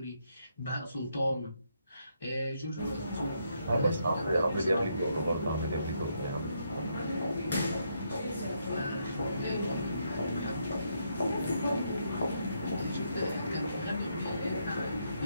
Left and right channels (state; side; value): inverted; both; correlation -0.77